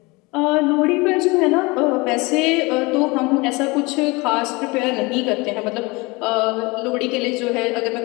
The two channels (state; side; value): quieter; right; 25.1 dB